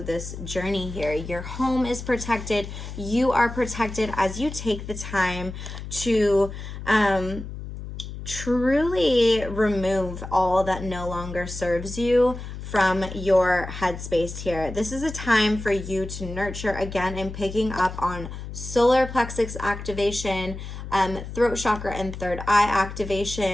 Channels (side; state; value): left; noise; hum, 9 dB below the sound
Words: this journey here. Your home is protected. You are protected as you take the time to truly remove all that no longer serves you from your headspace here. This is a time for you to nurture again and picking up on solar plexus activation, throat chakra and third eye